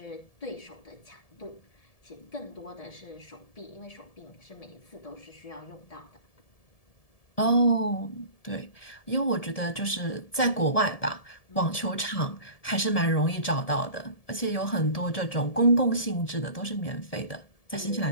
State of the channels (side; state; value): right; late; 1.7 ms